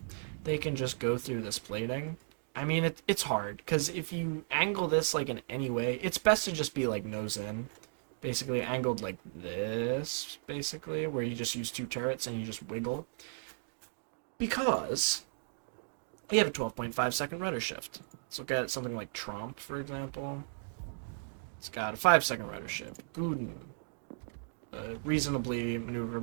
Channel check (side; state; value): left; silent; digital silence